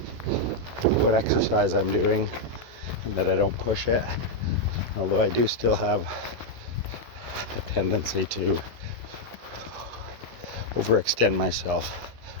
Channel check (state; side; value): late; left; 16 ms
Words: what exercise I'm doing, and that I don't push it, although I do still have a tendency to overextend myself.